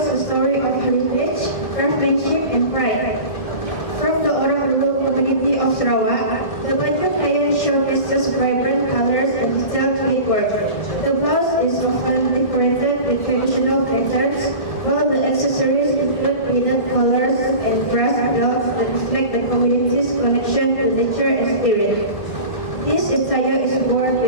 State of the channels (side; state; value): right; late; 1.7 ms